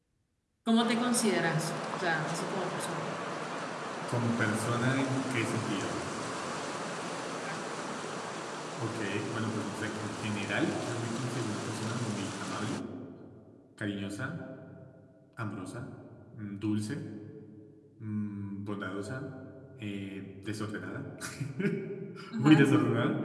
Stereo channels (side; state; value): both; identical; correlation 1.00